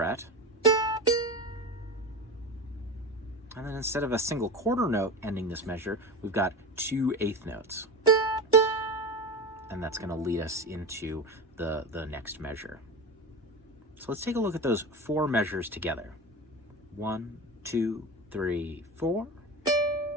And then instead of a single quarter note ending this measure, we've got 2 eighth notes. And that's going to lead us into the next measure. So let's take a look at those 4 measures together. 1, 2, 3, 4.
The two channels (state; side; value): normal; both; correlation 0.25